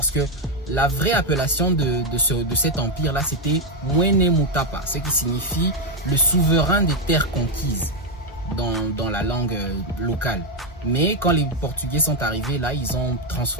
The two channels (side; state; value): both; normal; correlation 0.03